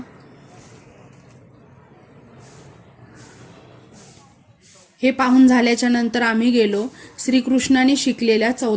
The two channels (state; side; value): identical; both; correlation 1.00